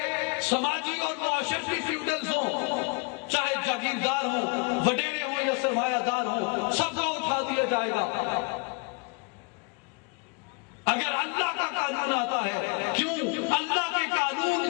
سماجی اور معاشرتی فیوڈلز ہوں، چاہے جاگیردار ہوں، وڈیرے ہوں یا سرمایہ دار ہوں، سب کو اٹھا دیا جائے گا. اگر اللہ کا قانون آتا ہے، کیوں اللہ کے قانون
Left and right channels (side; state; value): right; quieter; 31.5 dB